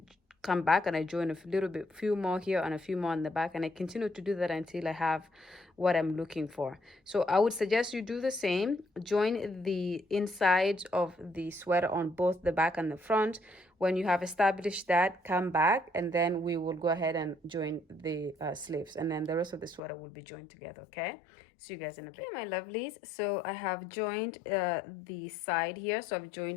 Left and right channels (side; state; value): right; drops out; at 19.8 s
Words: come back and I join a little bit, few more here and a few more on the back, and I continue to do that until I have what I'm looking for. So I would suggest you do the same. Join the insides of the sweater on both the back and the front. When you have established that, come back, and then we will go ahead and join the sleeves, and then the rest of the sweater will be joined together. Okay, see you guys in a bit. Okay, my lovelies, so I have joined the side here. So I've